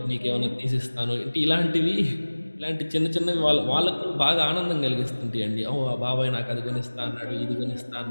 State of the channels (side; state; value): both; inverted; correlation -1.00